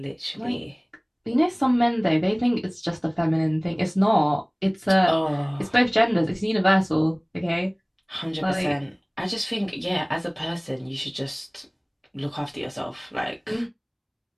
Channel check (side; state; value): both; identical; correlation 1.00